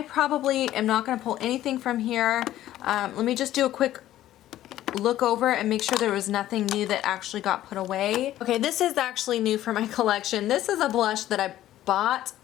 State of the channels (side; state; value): right; quieter; 13.5 dB